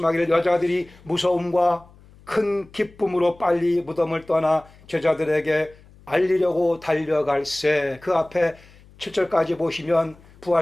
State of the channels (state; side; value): noise; left; hum, 25 dB below the sound